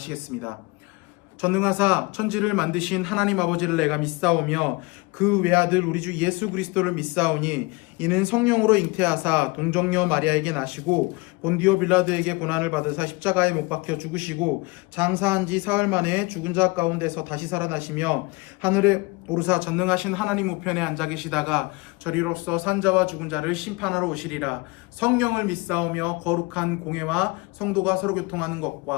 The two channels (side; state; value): right; quieter; 25.4 dB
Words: 전능하사 천지를 만드신 하나님 아버지를 내가 믿사오며 그 외아들 우리 주 예수 그리스도를 믿사오니 이는 성령으로 잉태하사 동정녀 마리아에게 나시고 본디오 빌라도에게 고난을 받으사 십자가에 못 박혀 죽으시고 장사한 지 사흘 만에 죽은 자 가운데서 다시 살아나시며 하늘에 오르사 전능하신 하나님 우편에 앉아 계시다가 저리로서 산자와 죽은 자를 심판하러 오시리라. 성령을 믿사오며 거룩한 공회와 성도가 서로 교통하는